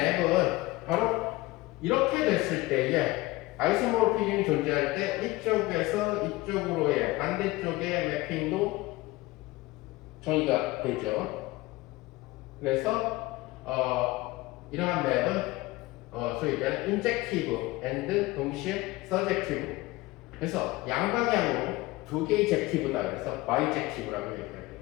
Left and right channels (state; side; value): quieter; right; 20.3 dB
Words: 바로 이렇게 됐을 때에 아이소모르피즘이 존재할 때 이쪽에서 이쪽으로의 반대쪽의 매핑도 정의가 되죠. 그래서 이러한 맵은 소위 얘기하는 인젝티브 앤드 동시에 서젝티브. 그래서 양방향으로 두 개의 젝티브다. 그래서 바이젝티브라고 얘기해요.